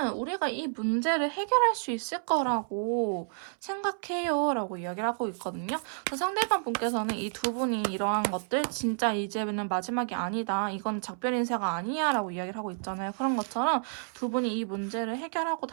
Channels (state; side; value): silent; left; 58 dB below the other